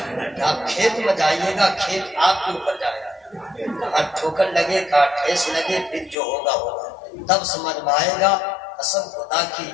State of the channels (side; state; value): right; drops out; at 6.2 s